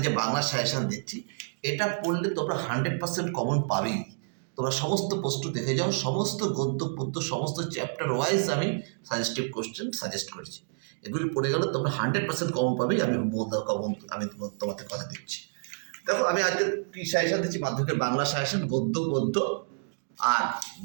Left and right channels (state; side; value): silent; left; digital silence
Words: যে বাংলার সাজেশান দিচ্ছি, এটা পড়লে তোমরা 100% কমন পাবেই। তোমরা সমস্ত প্রশ্ন দেখে যাও, সমস্ত গদ্য পদ্য সমস্ত চ্যাপ্টার ওয়াইজ আমি সাজেস্টিভ কোশ্চেন সাজেস্ট করেছি। এগুলি পড়ে গেলে তোমরা 100% কমন পাবেই। আমি ভম্বলদা কমন আমি তোমাদের কথা দিচ্ছি। দেখো আমি আজকে কি সাজেশান দিচ্ছি, মাধ্যমিকের বাংলা সাজেশান গদ্য পদ্য আর